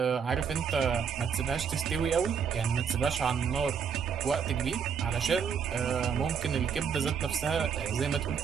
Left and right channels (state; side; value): quieter; left; 6.9 dB